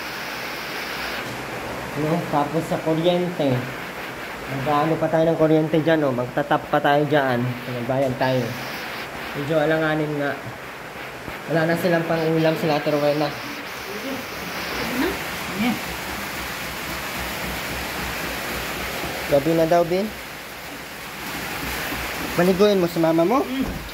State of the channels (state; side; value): identical; both; correlation 1.00